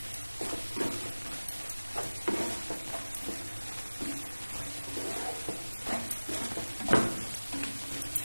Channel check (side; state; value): both; inverted; correlation -1.00